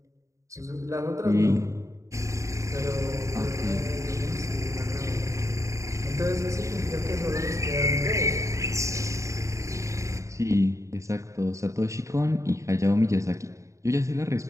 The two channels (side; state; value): left; late; 0.15 ms